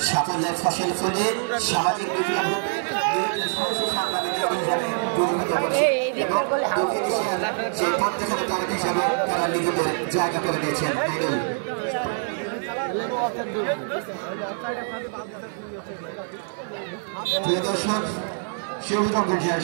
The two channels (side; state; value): left; silent; 59 dB below the other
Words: সাফল্যের ফসল ফলিয়ে সামাজিক বিপ্লব সেই প্রত্যেকের তারক হিসাবে তারা নিজেদের জায়গা করে দিয়েছেন। প্রিয় দর্শক, সবুজ